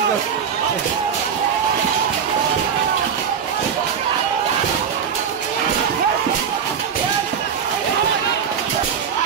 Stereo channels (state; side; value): quieter; left; 7.4 dB